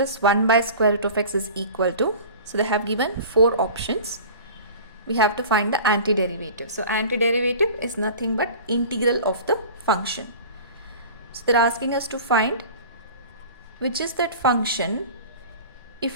1 by square root of x is equal to, so they have given 4 options. We have to find the antiderivative. So antiderivative is nothing but integral of the function. So they're asking us to find which is that function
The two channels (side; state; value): both; inverted; correlation -0.39